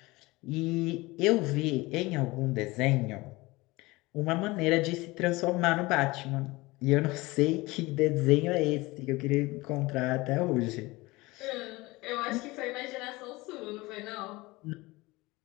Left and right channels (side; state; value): right; quieter; 21.8 dB